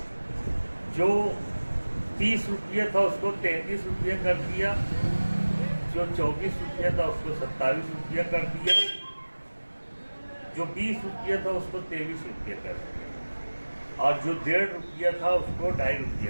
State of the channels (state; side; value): inverted; both; correlation -1.00